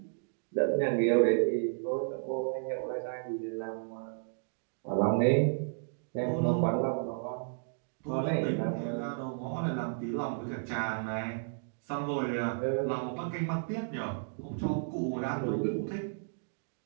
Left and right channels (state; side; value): silent; left; digital silence